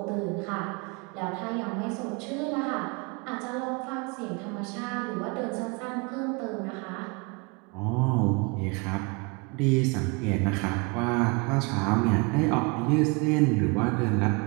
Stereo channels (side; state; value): left; quieter; 29.3 dB